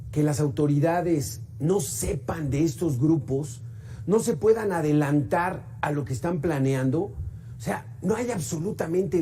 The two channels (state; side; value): identical; both; correlation 1.00